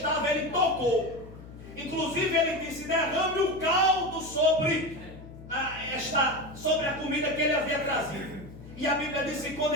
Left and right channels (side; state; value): left; noise; hum, 16 dB below the sound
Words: ele tocou. Inclusive ele disse: derrame o caldo sobre a comida que ele havia trazido. E a Bíblia diz que quando